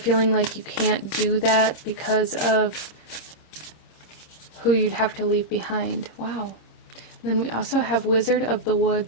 like you can't do that because of who you'd have to leave behind. Wow. And then we also have Wizard of the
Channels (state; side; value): late; right; 26 ms